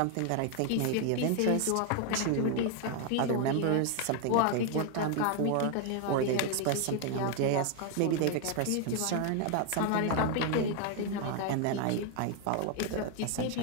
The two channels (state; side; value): different; both; correlation 0.01